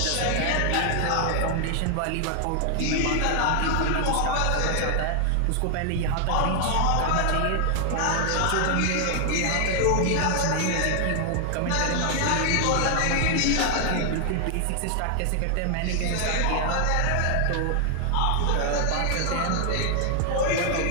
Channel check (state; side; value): different; both; correlation 0.00